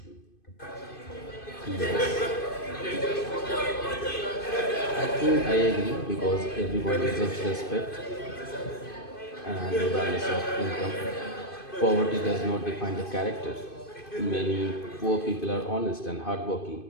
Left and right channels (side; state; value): right; late; 2.5 ms